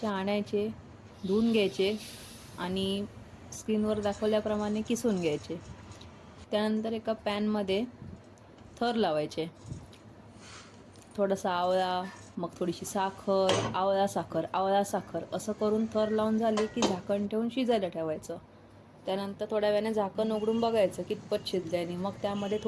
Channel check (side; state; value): both; identical; correlation 1.00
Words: आणायचे, धुवून घ्यायचे आणि स्क्रीनवर दाखवल्याप्रमाणे किसून घ्यायचे. त्यानंतर एका पॅनमध्ये थर लावायचे. थोडासा आवळा, मग थोडीशी साखर, आवळा साखर असं करून थर लावून झाले की झाकण ठेवून शिजायला ठेवायचं. त्यानंतर थोड्या वेळाने झाकण उघडून बघायचं कितपत शिजल्याने. मग त्यामध्ये